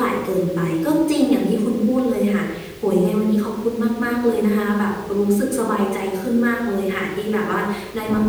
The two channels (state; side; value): identical; both; correlation 1.00